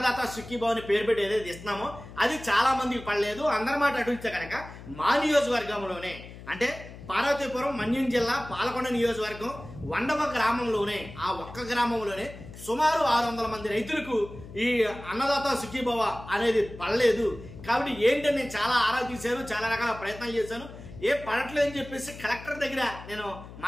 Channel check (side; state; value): left; noise; hum, 15 dB below the sound